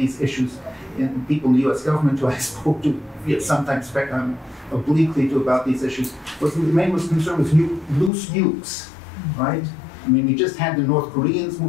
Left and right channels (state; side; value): drops out; right; at 8.1 s